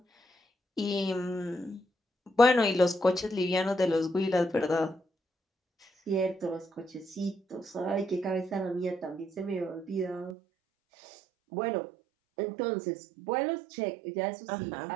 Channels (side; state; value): left; drops out; at 10.4 s